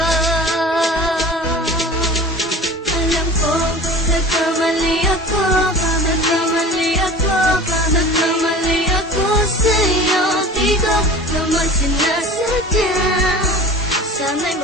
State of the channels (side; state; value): both; normal; correlation 0.38